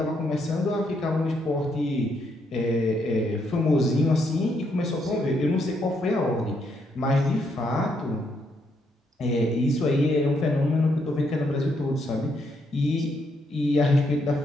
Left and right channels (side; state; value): both; normal; correlation 0.75